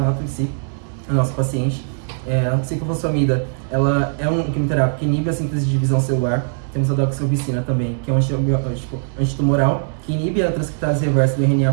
em si, a nossa paciente. A ciclofosfamida, ela é um quimioterápico que inibe a síntese de divisão celular. Temos a doxorubicina também, que é um antibiótico antitumoral, que inibe a transcriptase reversa do RNA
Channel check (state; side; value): silent; left; 66 dB below the other